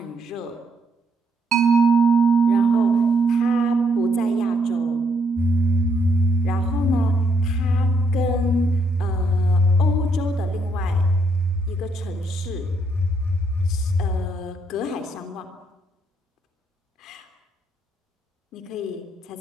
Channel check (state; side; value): normal; both; correlation 0.74